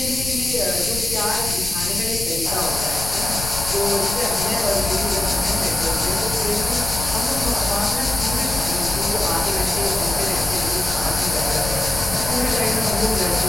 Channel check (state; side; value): noise; left; rumble, 9 dB below the sound